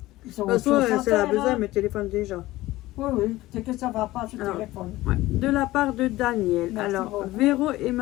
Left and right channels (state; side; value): quieter; right; 17.6 dB